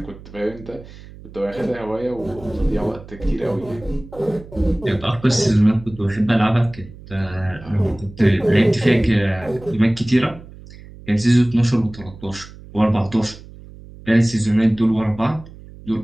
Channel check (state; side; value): noise; right; hum, 18 dB below the sound